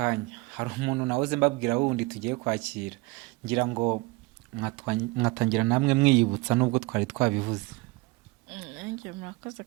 hari umuntu nahoze mbabwira wundi tugiye kwakira, ngira ngo mwatangira namwe mwiyibutsa nubwo twari twabivuze. nanjye murakoze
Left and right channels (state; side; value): quieter; left; 22.7 dB